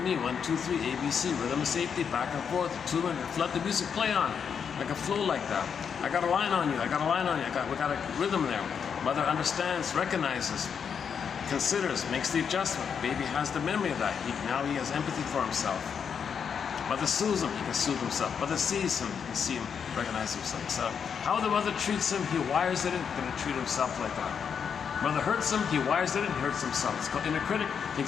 1, 2, 3, A, B, C, rhythm of safety, back and forth, attunement, let the music play on, like a flow like that. I got a line on you, I got a line on you, we got a rhythm there. Mother understands, recognizes, considers, makes the adjustment. Baby has the memory of that. Now he has empathy for himself. Mother soothes him, he can soothe himself. Mother sees him, he can see him, recognize himself. So how the mother treats him, he wires it in, going to treat himself like that. Mother hurts him, he wires it in, he hurts himself. It's called inner critic,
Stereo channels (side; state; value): right; quieter; 7.0 dB